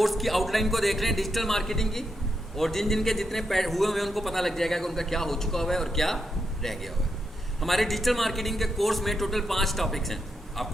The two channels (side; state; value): both; normal; correlation 0.83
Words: की आउटलाइन को देख रहे हैं डिजिटल मार्केटिंग की, और जिन जिनके जितने हुए हुए उनको पता लग जाएगा कि उनका क्या हो चुका हुआ है और क्या रह गया हुआ है। हमारे डिजिटल मार्केटिंग के कोर्स में टोटल 5 टॉपिक्स हैं,